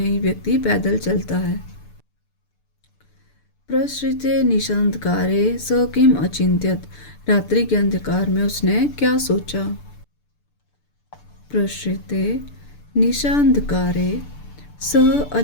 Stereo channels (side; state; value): right; late; 6.8 ms